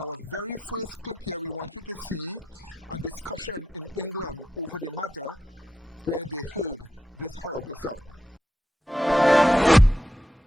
very first clip here, we want you to see a discussion in England over the matter where they heard this horrible sound.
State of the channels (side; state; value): both; normal; correlation 0.85